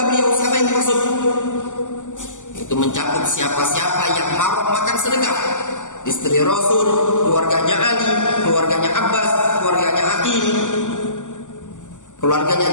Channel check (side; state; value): right; late; 0.86 ms